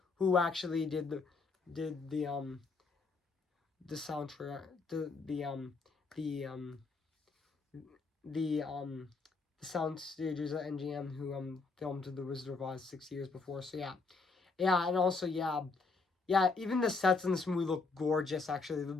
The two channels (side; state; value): right; quieter; 4.2 dB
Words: who actually did the soundtrack, the sound stages at NGM who filmed The Wizard of Oz 6 years before. So yeah, and also even the sets in this movie look gorgeous. Actually,